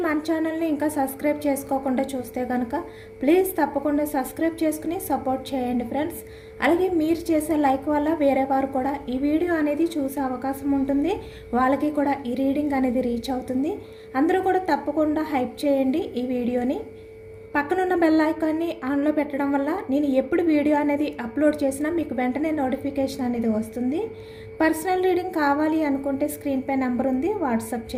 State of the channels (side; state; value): both; identical; correlation 1.00